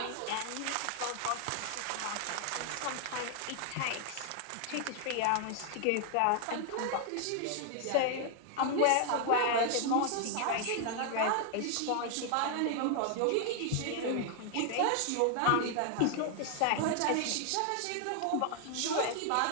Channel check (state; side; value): different; both; correlation 0.00